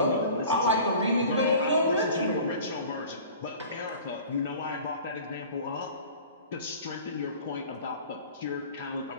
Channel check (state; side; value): inverted; both; correlation -0.43